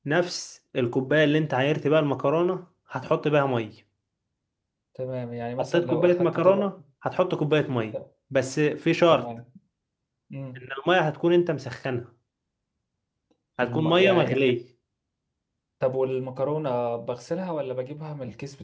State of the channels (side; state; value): both; identical; correlation 1.00